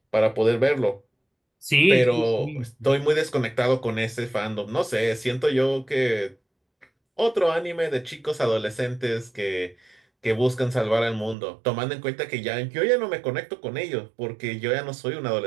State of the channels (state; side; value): drops out; left; at 11.4 s